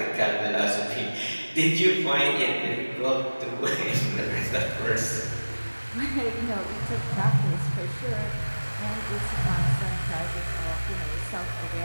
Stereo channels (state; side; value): inverted; both; correlation -1.00